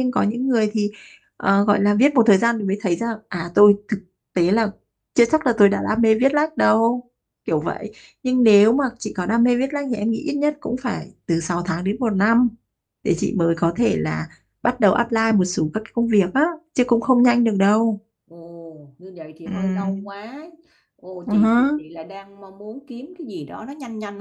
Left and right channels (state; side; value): identical; both; correlation 1.00